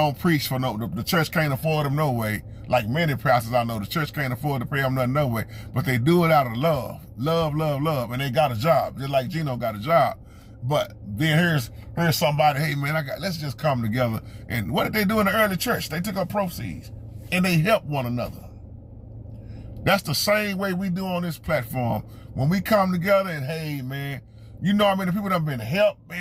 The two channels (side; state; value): both; identical; correlation 1.00